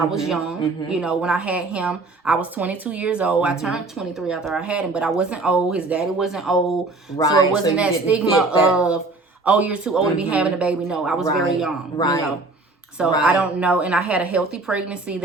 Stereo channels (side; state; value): left; quieter; 3.3 dB